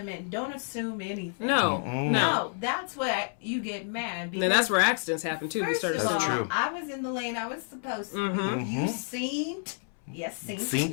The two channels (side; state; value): right; silent; 58 dB below the other